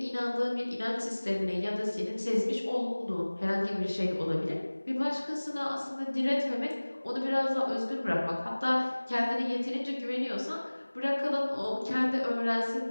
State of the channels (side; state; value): both; inverted; correlation -1.00